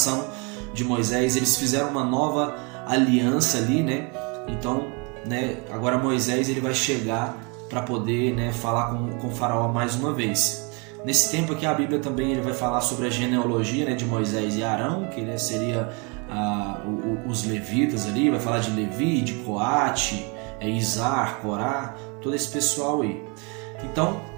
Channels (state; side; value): quieter; left; 32.2 dB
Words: de Moisés, eles fizeram uma nova aliança ali, né? Então, né, agora Moisés ele vai chegar para poder, né, falar com o faraó mais uma vez. Nesse tempo aqui a Bíblia também ele vai falar sobre a genealogia, né, de Moisés e Arão, que né, seria os levitas ali, vai falar de Levi, de Coate, Izar, Corá, todo esse pessoal aí. Então